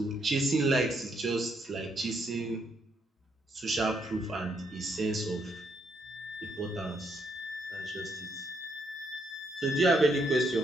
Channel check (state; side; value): normal; both; correlation 0.75